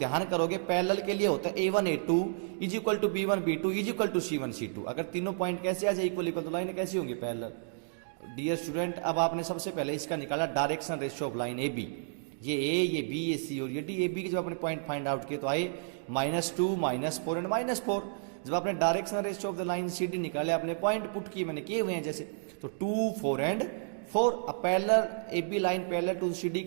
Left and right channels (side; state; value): left; silent; digital silence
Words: करोगे पैरेलल के लिए होता है A1 A2 is equal to B1 B2 is equal to C1 C2। अगर तीनों पॉइंट कैसे आ जाए इक्वल इक्वल, तो लाइन कैसी होंगी? पैरेलल। डियर स्टूडेंट, अब आपने सबसे पहले इसका निकाला direction ratio of line A B. ये ए, ये बी, ये सी और ये डी। ए बी के जब आपने पॉइंट फाइंड आउट किए तो आए -2 -4 एंड -4। जब आपने direction ratio of the line C D निकाले, आपने पॉइंट पुट किए, मैंने किए हुए हैं जैसे, तो 2 4 एंड 4। अब parallel A B line parallel to C D